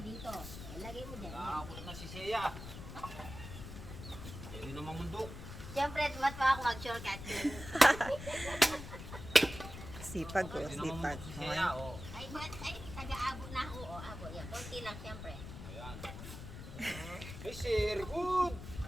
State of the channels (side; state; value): left; noise; rumble, 11 dB below the sound